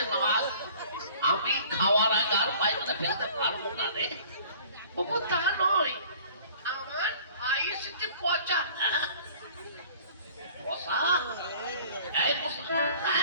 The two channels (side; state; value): both; inverted; correlation -0.49